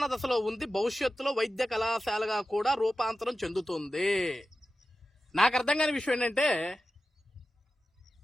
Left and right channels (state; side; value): normal; both; correlation 0.93